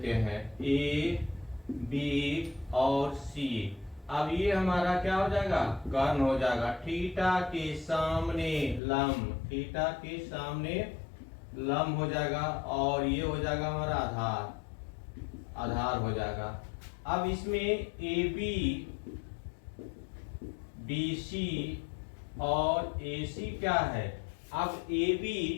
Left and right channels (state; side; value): drops out; right; at 8.8 s